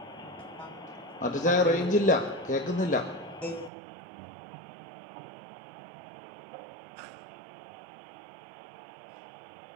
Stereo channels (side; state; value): left; drops out; at 3.7 s